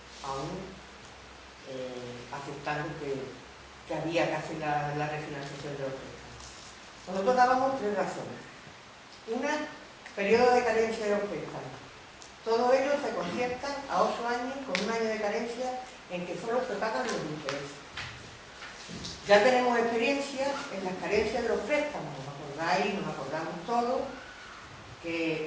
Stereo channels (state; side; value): identical; both; correlation 1.00